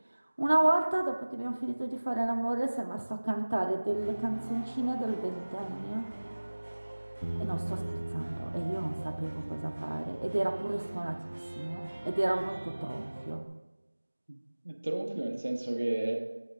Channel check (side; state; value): both; inverted; correlation -1.00